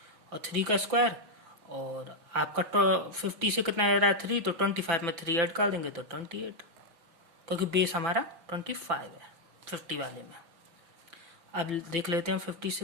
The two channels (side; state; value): left; late; 6.0 ms